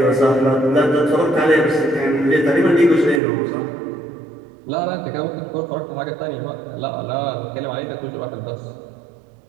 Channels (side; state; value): left; drops out; at 3.2 s